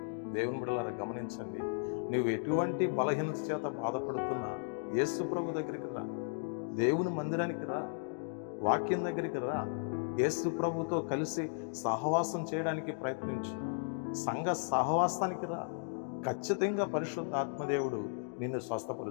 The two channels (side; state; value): right; silent; digital silence